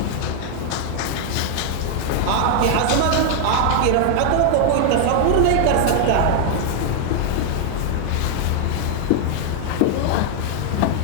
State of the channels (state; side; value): different; both; correlation 0.00